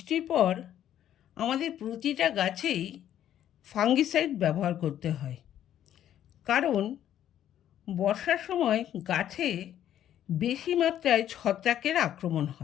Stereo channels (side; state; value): right; quieter; 11.1 dB